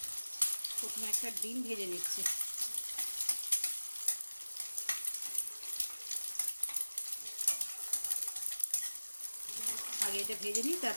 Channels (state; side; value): inverted; both; correlation -1.00